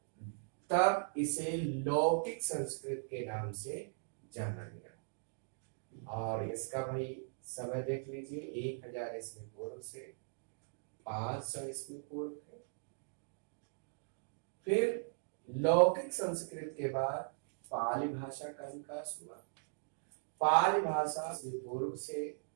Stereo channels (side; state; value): left; silent; digital silence